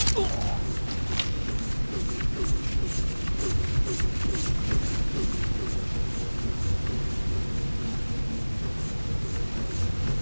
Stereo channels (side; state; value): both; inverted; correlation -1.00